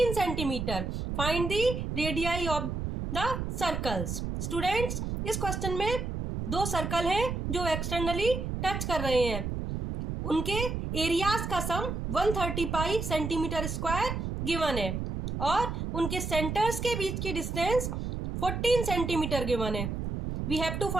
centimeter. Find the radii of the circles. Students, इस क्वेश्चन में दो सर्कल हैं जो एक्सटर्नली टच कर रहे हैं, उनके एरियाज का sum 130 pi centimetre square given है और उनके सेंटर्स के बीच की डिस्टेंस 14 सेंटीमीटर गिवन है. We have to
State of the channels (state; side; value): noise; right; rumble, 3 dB below the sound